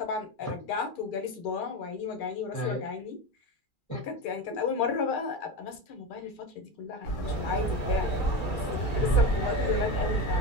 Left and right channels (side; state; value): right; late; 2.4 ms